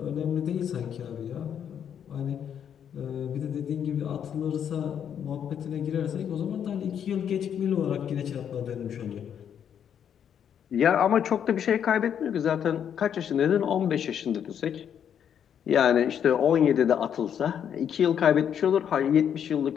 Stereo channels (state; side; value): quieter; right; 8.7 dB